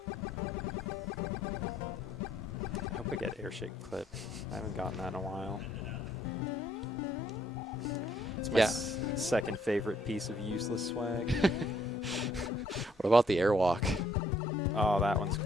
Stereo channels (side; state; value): both; normal; correlation 0.67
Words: hope I get airshake clip. I haven't gotten that in a while. It's my second favorite piece of useless swag. What about the airwalk? Oh, that one's